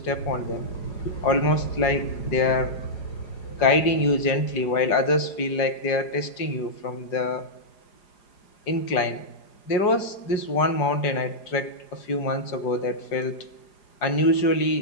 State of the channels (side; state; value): right; late; 4.9 ms